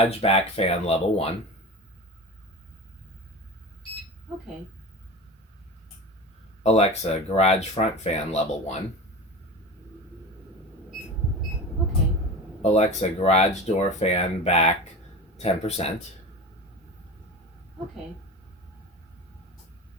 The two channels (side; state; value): both; normal; correlation 0.30